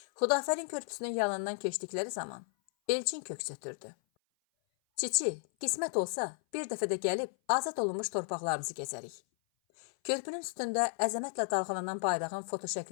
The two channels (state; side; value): silent; right; 55 dB below the other